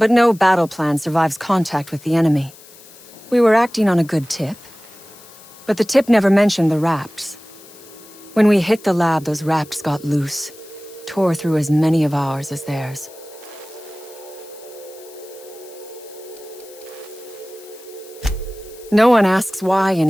no battle plan survives contact with the enemy. We were acting on a good tip, but the tip never mentioned the Raps. When we hit the lab, those Raps got loose, tore through as many of ours as theirs. No one asks why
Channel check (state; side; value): noise; left; hiss, 21 dB below the sound